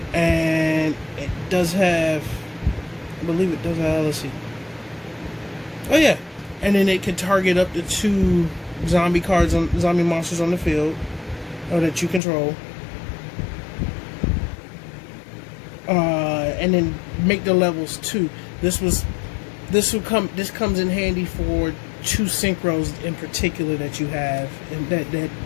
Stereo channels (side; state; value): right; drops out; at 12.2 s